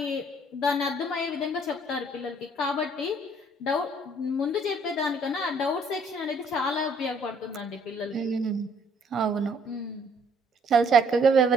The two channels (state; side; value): normal; both; correlation 0.62